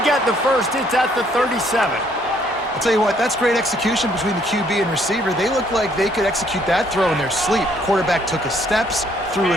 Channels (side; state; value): both; normal; correlation 0.66